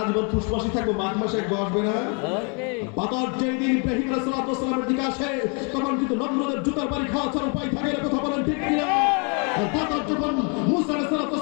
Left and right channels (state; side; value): quieter; right; 36.4 dB